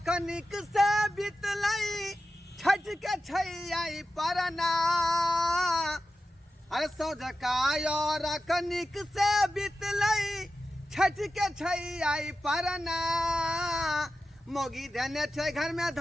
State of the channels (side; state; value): both; normal; correlation 0.92